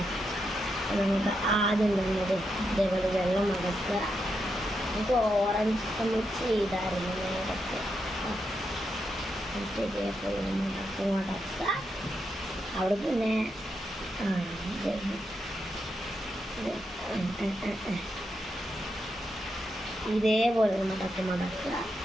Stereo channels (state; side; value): normal; both; correlation 0.84